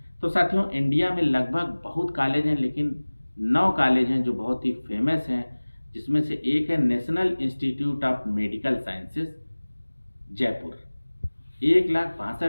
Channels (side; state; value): both; inverted; correlation -1.00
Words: तो साथियों इंडिया में लगभग बहुत कॉलेज हैं, लेकिन 9 कॉलेज हैं जो बहुत ही फेमस हैं, जिसमें से एक है national institute of medical sciences Jaipur.